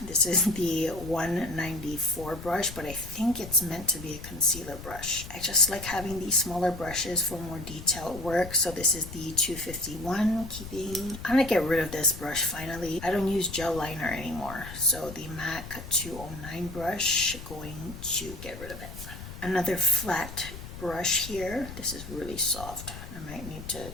This is the 194 brush, but I think it's meant to be a concealer brush. I just like having these smaller brushes for more detailed work, so this is the 251 keeping. I'm gonna get rid of this brush finally. I don't use gel liner anymore, so the MAC 209 brush, going to get rid of it. Another flat brush here. This is really soft. I might need to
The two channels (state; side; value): noise; left; rumble, 12 dB below the sound